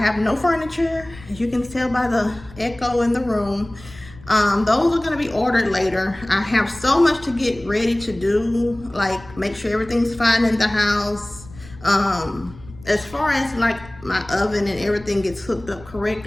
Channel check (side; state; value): left; noise; rumble, 20 dB below the sound